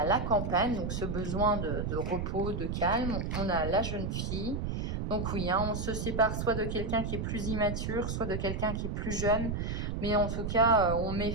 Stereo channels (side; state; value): right; noise; rumble, 2 dB below the sound